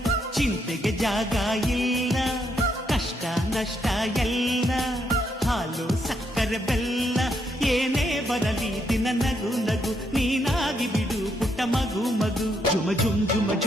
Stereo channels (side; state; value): both; normal; correlation 0.76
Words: ಚಿಂತೆಗೆ ಜಾಗ ಇಲ್ಲ, ಕಷ್ಟ ನಷ್ಟ ಎಲ್ಲ ಹಾಲು ಸಕ್ಕರೆ ಬೆಲ್ಲ, ಏನೇ ಬರಲಿ ದಿನ ನಗು ನಗು ನೀನಾಗಿ ಬಿಡು ಪುಟ್ಟ ಮಗು ಮಗು. ಜುಮ ಜುಮ್ ಜುಮ